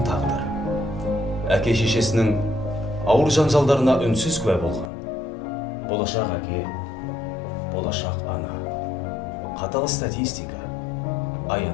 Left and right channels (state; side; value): drops out; right; at 4.9 s